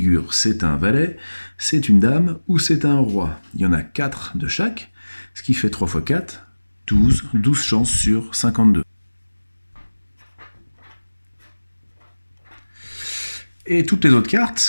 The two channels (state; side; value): inverted; both; correlation -1.00